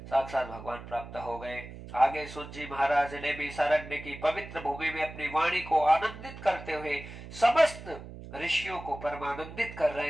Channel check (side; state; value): right; noise; hum, 13 dB below the sound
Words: साक्षात भगवान प्राप्त हो गए। आगे सूत जी महाराज ने भी सारण्य की पवित्र भूमि में अपनी वाणी को आनंदित करते हुए समस्त ऋषियों को परमानंदित कर